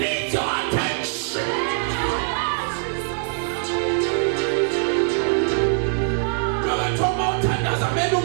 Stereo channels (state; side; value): silent; left; 64 dB below the other